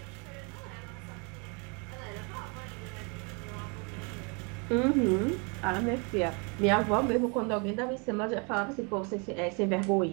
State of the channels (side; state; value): left; quieter; 33.9 dB